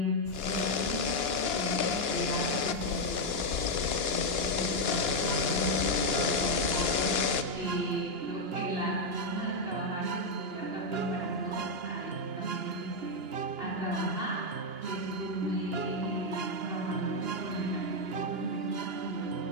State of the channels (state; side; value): late; left; 2.9 ms